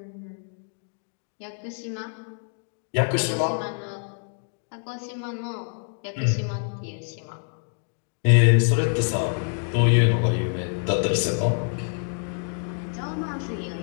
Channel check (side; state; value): right; silent; 56 dB below the other